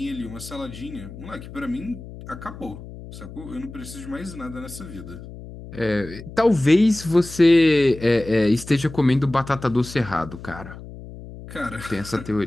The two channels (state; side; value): noise; left; hum, 14 dB below the sound